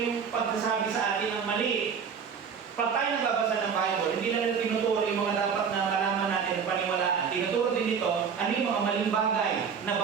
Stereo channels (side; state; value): left; quieter; 6.6 dB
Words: pagsasabi sa atin ng mali. Pag tayo nagbabasa ng Bible, hindi lang natin tinuturo yung mga dapat na malaman natin at paniwalaan. Tinuturo din dito, ano yung mga maling bagay na